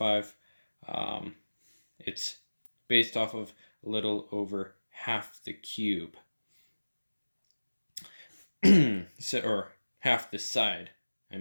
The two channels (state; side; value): inverted; both; correlation -1.00